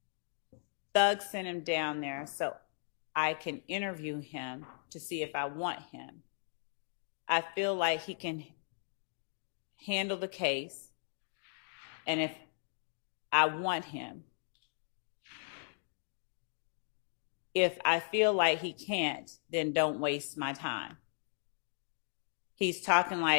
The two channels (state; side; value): silent; right; digital silence